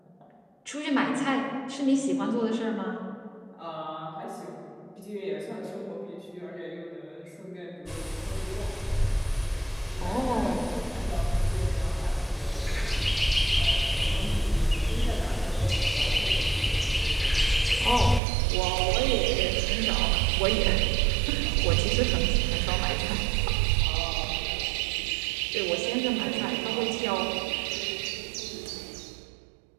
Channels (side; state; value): left; drops out; at 18.2 s